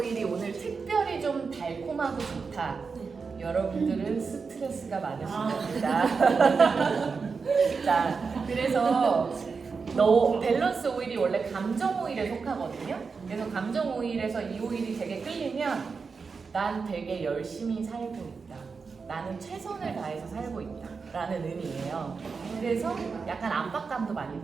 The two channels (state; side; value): quieter; left; 5.0 dB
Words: 오늘 특별히 좀 달콤하고 좋다. 여러분들은 스트레스가 많으신 겁니다. 자, 그래서 밸런스 오일이 원래 감정 오일에 속하거든요. 그래서 감정 오일에서 이 오일이 되게 끌리면 난 되게 열심히 살고 있다. 나는 최선을 다해서 살고 있다. 라는 의미예요. 그래서 약간 압박감도 많이